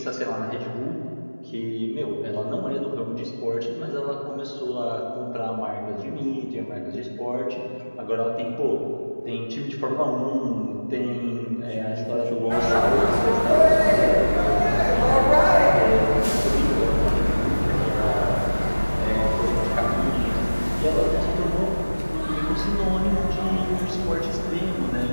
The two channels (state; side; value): inverted; both; correlation -1.00